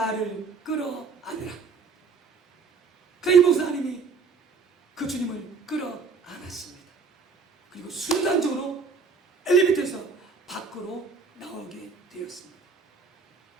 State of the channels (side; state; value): left; quieter; 4.9 dB